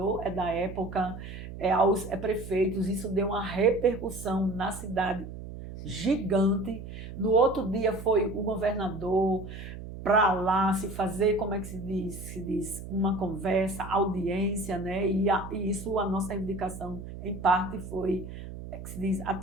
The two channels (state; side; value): noise; right; hum, 11 dB below the sound